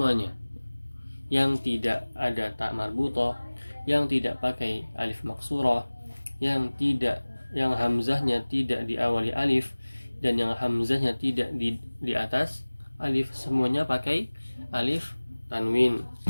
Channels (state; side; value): inverted; both; correlation -1.00